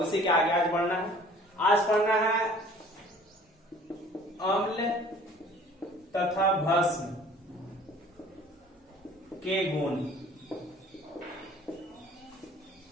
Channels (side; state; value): both; normal; correlation 0.50